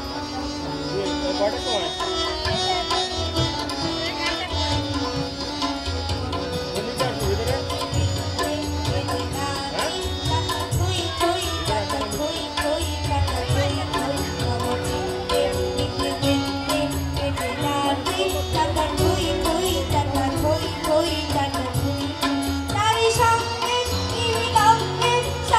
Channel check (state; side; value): identical; both; correlation 1.00